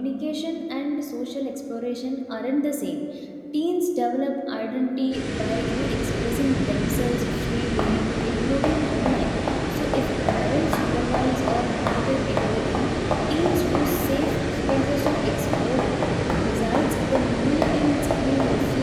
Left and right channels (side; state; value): both; identical; correlation 1.00